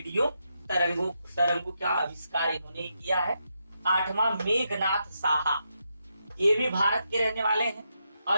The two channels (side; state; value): both; inverted; correlation -0.83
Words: तरंगों का आविष्कार इन्होंने ही किया है। 8वां मेघनाथ साहा। ये भी भारत के रहने वाले हैं